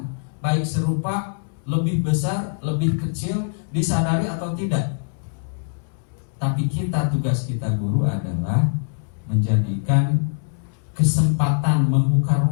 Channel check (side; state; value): right; silent; 64 dB below the other